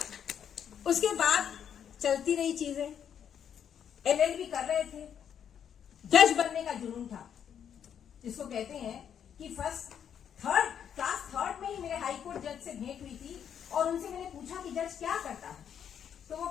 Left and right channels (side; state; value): right; quieter; 8.6 dB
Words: उसके बाद चलती रही चीजें, LLB कर रहे थे, जज बनने का जुनून था, जिसको कहते हैं कि क्लास थर्ड में ही मेरे हाई कोर्ट जज से भेंट हुई थी और उनसे मैंने पूछा कि जज क्या करता है, तो वो